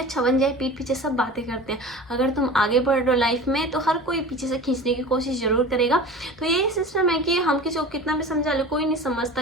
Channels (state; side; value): normal; both; correlation 0.36